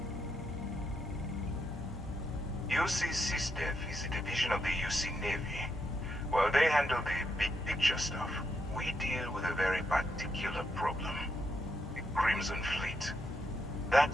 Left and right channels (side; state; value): both; normal; correlation 0.80